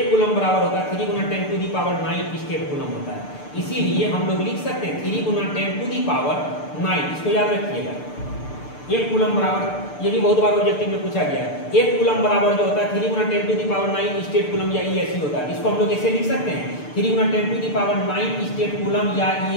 कूलम बराबर होता है 3 × 10⁹ स्टेट कूलम होता है। इसीलिए हम लोग लिख सकते हैं 3 × 10⁹, इसको याद रखिएगा। 1 कूलम बराबर, ये भी बहुत बार ऑब्जेक्टिव में पूछा गया है। 1 कूलम बराबर जो होता है 3 × 10⁹ स्टेट कूलम या ESU होता है। इसको हम लोग ऐसे लिख सकते हैं 3 × 10⁹ स्टेट कूलम या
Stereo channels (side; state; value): right; late; 6.8 ms